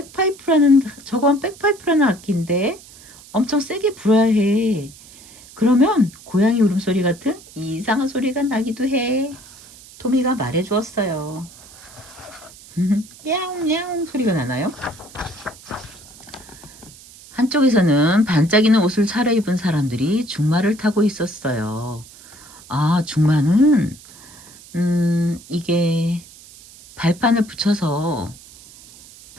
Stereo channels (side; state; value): right; noise; hiss, 21 dB below the sound